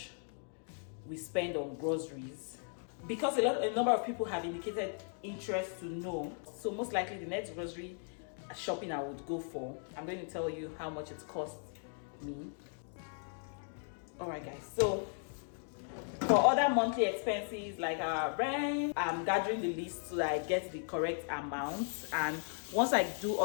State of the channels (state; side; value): silent; right; 53 dB below the other